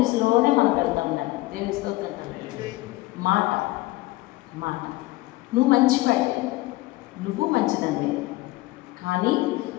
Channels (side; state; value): right; quieter; 19.6 dB